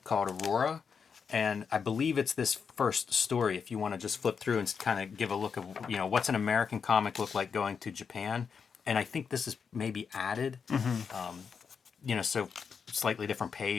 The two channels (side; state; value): right; quieter; 6.2 dB